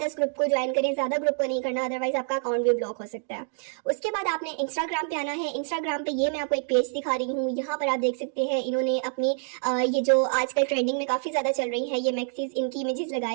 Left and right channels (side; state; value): left; silent; 60 dB below the other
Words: ग्रुप को ज्वाइन करें, ज्यादा ग्रुप को नहीं करना, अदरवाइज आपका अकाउंट भी ब्लॉक हो सकता है। उसके बाद आपने इंस्टाग्राम पे आना है। इंस्टाग्राम पे ये मैं आपको एक पेज दिखा रही हूँ, यहाँ पर आप देख सकते हैं इन्होंने अपनी ये जो आजकल ट्रेंडिंग में काफी ज्यादा चल रही है ये मैक्सीज, इनकी इमेजेस